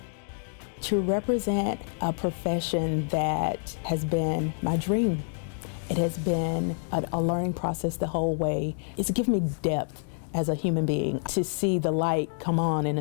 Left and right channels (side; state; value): right; silent; 60 dB below the other